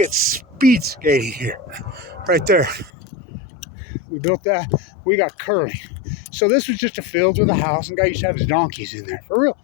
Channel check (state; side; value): drops out; right; at 2.9 s